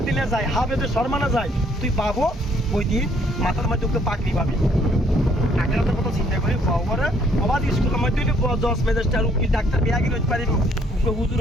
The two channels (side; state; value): both; normal; correlation 0.65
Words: যায় হাফেজের সম্মানে যায় তুই পাবো ওই দিয়ে মাথার মধ্যে পাগড়ি পাবি আগের কথা চিন্তা করি ফওয়ারে আবার স্কুলের মধ্যে জজ ম্যাজিস্ট্রেট উকিল ডাক্তার বিয়াগি হইতে পারিব হুজুর